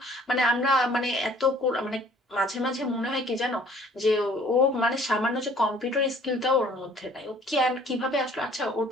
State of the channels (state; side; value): normal; both; correlation 0.55